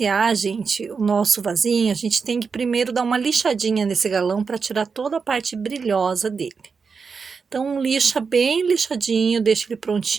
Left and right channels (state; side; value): quieter; left; 5.3 dB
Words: gente, o nosso vasinho, a gente tem que primeiro dar uma lixadinha nesse galão para tirar toda a parte brilhosa dele. Então lixa bem lixadinho, deixa ele